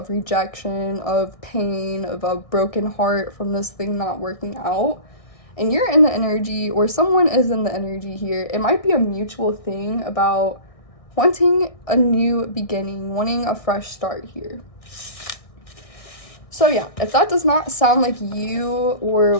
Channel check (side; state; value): right; late; 1.6 ms